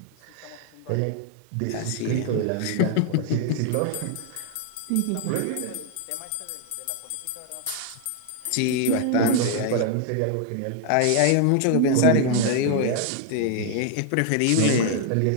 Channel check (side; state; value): both; different; correlation 0.00